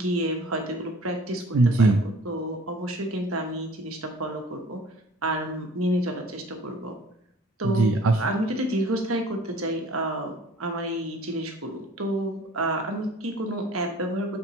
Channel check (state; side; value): normal; both; correlation 0.50